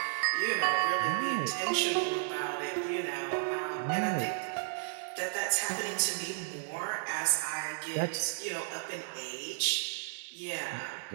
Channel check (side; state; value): left; silent; 56 dB below the other